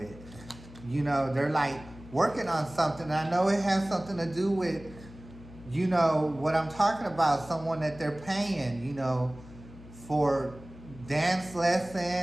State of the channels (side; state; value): left; noise; hum, 18 dB below the sound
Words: They're like working on something. And I know it has something to do with, what I'm talking about, someone that they're paying, for dance